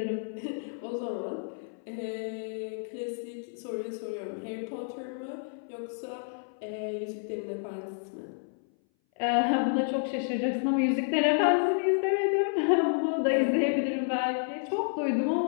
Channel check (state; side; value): silent; right; 58 dB below the other